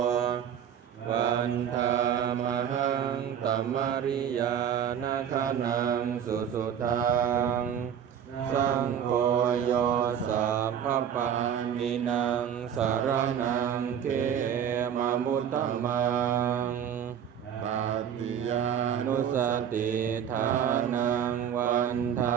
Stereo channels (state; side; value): quieter; left; 8.8 dB